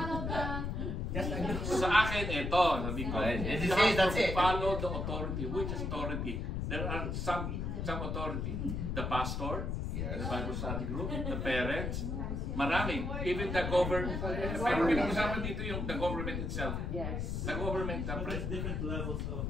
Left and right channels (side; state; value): left; noise; rumble, 2 dB below the sound